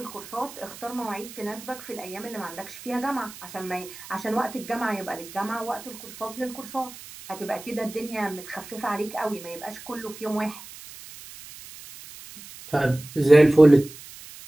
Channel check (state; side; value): noise; right; hiss, 16 dB below the sound